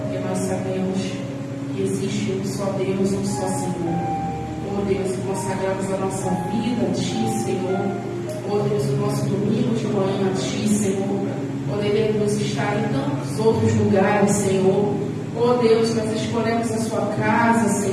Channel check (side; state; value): both; identical; correlation 1.00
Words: Porque nós sabemos que existe um só Deus, um só Senhor. Oh Deus, consagramos a nossa vida a ti, Senhor. Oh Deus, o nosso domingo de manhã a ti, Senhor. Poderemos estar em tantos outros lugares, Senhor. Oh Deus, nós escolhemos a sua casa,